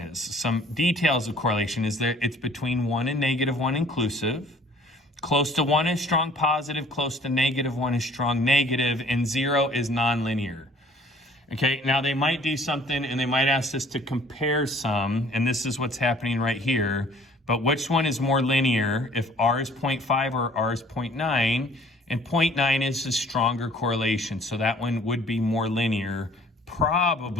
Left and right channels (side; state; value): both; normal; correlation 0.54